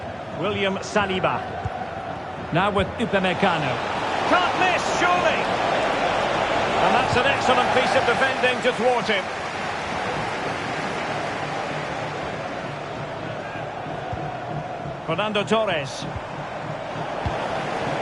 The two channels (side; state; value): both; identical; correlation 1.00